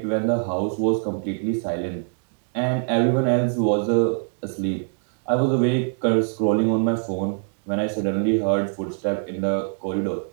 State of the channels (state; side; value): silent; left; digital silence